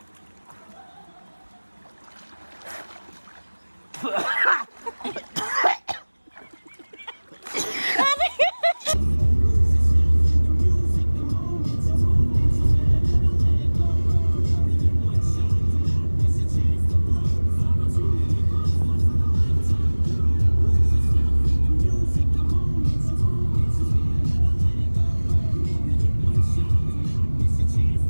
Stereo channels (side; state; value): both; inverted; correlation -1.00